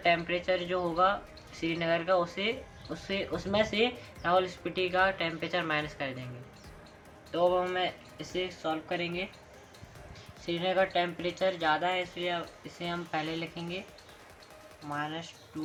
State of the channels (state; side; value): identical; both; correlation 1.00